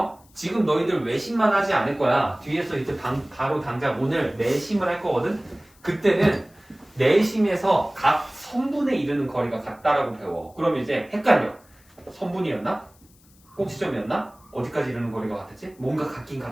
지금 너희들 외심만 하지 않을 거야. 뒤에서 이제 바로 당장 오늘 내심을 할 거거든. 그때는 내심에서 각 선분에 이르는 거리가 같다라고 배워. 그럼 이제 헷갈려. 선분이었나? 꼭지점이었나? 어디까지 이르는 거리가 같았지? 뭔가 같긴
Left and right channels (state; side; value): noise; left; hiss, 30 dB below the sound